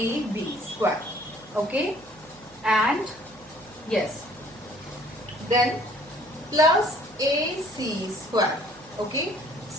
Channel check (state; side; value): noise; right; hum, 27 dB below the sound